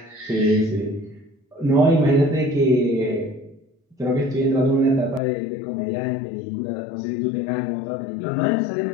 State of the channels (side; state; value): right; drops out; at 5.2 s